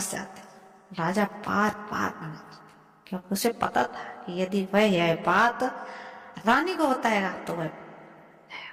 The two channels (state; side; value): identical; both; correlation 1.00